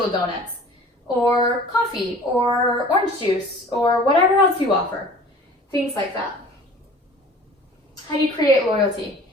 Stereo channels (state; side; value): normal; both; correlation 0.46